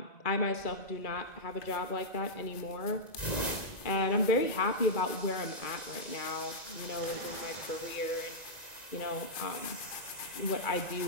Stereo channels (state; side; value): late; right; 1.9 ms